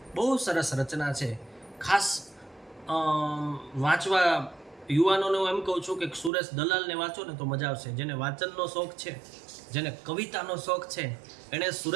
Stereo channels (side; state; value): left; drops out; at 6.3 s